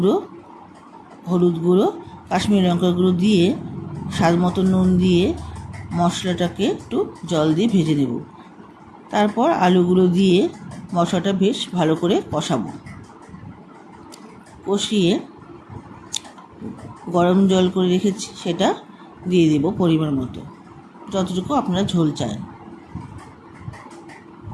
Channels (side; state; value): both; identical; correlation 1.00